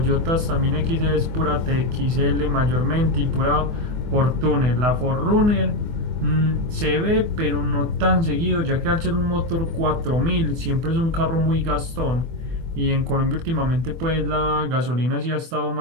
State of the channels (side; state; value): left; late; 24 ms